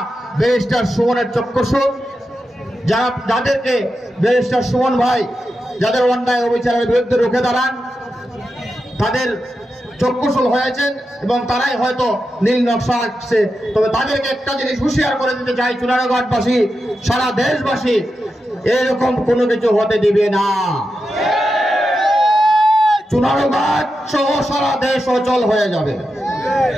ব্যারিস্টার সুমনের চক্ষুষু, যাদেরকে ব্যারিস্টার সুমন ভাই যাদের অন্যায় অবিচারের বিরুদ্ধে রুখে দাঁড়ান, তাদের চক্ষুশূল হয়েছেন এবং তারাই হয়তো নীল নকশা আঁকছে। তবে তাদেরকে একটা জিনিস হুঁশিয়ার করে দিতে চাই, চুনারুঘাটবাসী, সারা দেশবাসী এরকম কোনো কিছু হতে দিবে না। চুনারুঘাট সহ সারা দেশ অচল হয়ে যাবে।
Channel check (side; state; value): both; normal; correlation 0.89